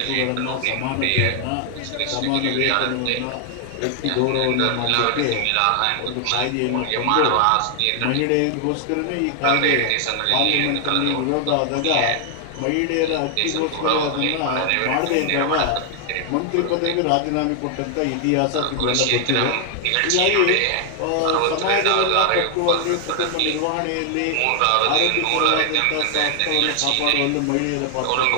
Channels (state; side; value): different; both; correlation 0.00